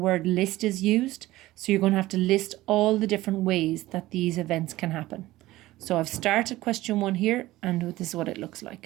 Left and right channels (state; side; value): quieter; left; 17.1 dB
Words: list is used. So you're going to have to list all the different ways that these events can happen. So I've started question 1 here, and this is what it looks